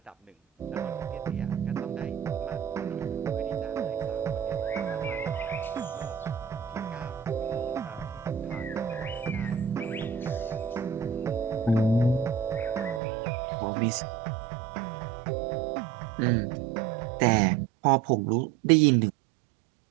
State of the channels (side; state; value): left; drops out; at 13.0 s